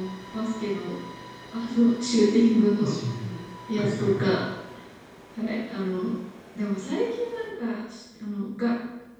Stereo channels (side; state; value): both; identical; correlation 1.00